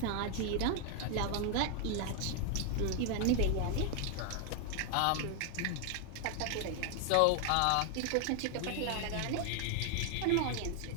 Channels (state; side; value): different; both; correlation 0.00